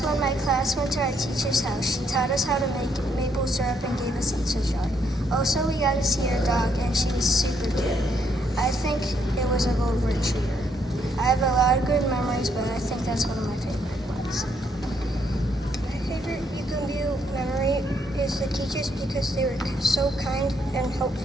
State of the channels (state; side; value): normal; both; correlation 0.72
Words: when my class went to our teacher's house. She taught us how to make maple syrup and gave us each a jar. Also, we got to see her dog, and she was super cute. I think it was a gold retriever. I have a lot of good memories, but I think that's one of my favorite ones. My favorite Eagle View memory is the teachers because they were so kind and